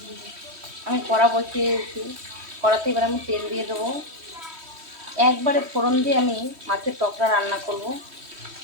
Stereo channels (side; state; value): left; late; 3.1 ms